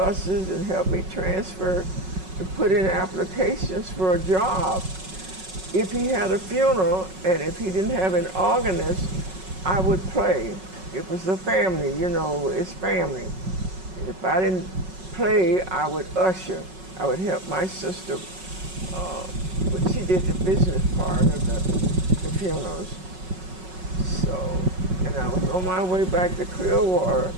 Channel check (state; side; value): late; left; 5.4 ms